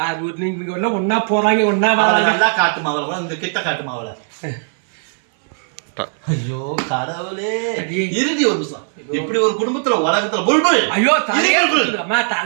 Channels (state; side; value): silent; left; digital silence